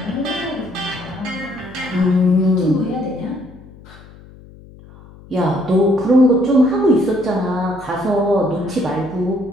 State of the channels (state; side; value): noise; left; hum, 21 dB below the sound